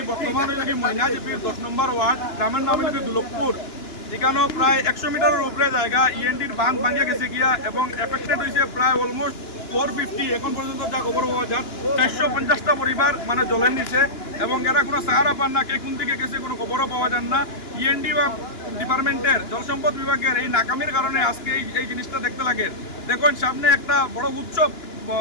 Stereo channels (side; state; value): right; late; 2.9 ms